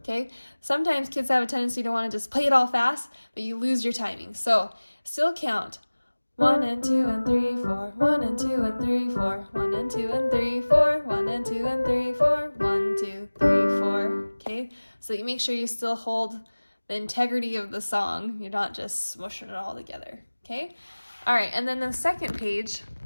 Sometimes kids have a tendency to want to just play it all fast, but you lose your timing. So still count 1 and 2 and 3, 4, 1 and 2 and 3, 4, 1 and 2 and 3, 4, 1 and 2 and 3, 4, 1, 2, 3, 4. Okay, so you make sure you still hold the integrity of the song. You're not just smushing it all together. Okay, all right, and then the second page,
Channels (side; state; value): both; inverted; correlation -1.00